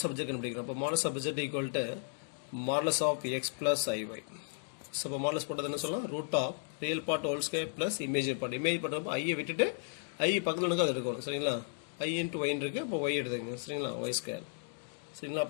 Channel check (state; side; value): silent; right; digital silence